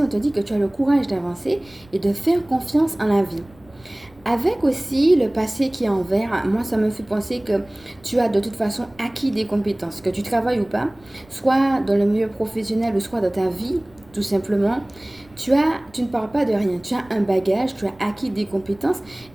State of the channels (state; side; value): noise; right; rumble, 27 dB below the sound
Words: on te dit que tu as le courage d'avancer et de faire confiance en la vie. Avec aussi le passé qui est en vert, moi ça me fait penser que tu as de toute façon acquis des compétences, que tu travailles ou pas, soit dans le milieu professionnel ou soit dans ta vie, tout simplement. Tu ne pars pas de rien, tu as un bagage, tu as acquis des compétences